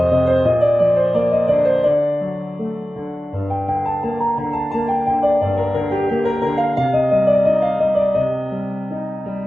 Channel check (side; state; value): both; normal; correlation 0.95